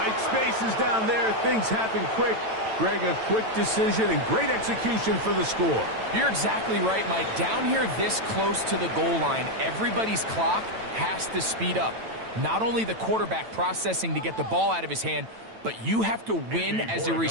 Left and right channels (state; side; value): late; left; 9.0 ms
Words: spaces down there. Things happen quick. Greg, a quick decision and great execution for the score. You're exactly right, Mike. Down here this close to the goal line, everybody's clock has to speed up. Not only the quarterback processing to get the ball out of his hand, but you have to win as a